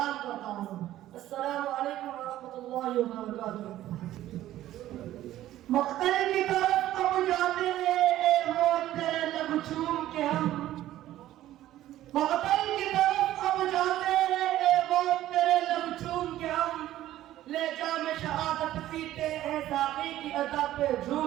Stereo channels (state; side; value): quieter; left; 13.8 dB